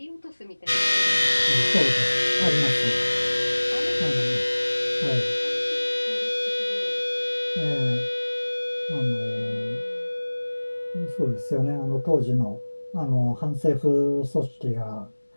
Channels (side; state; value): both; inverted; correlation -1.00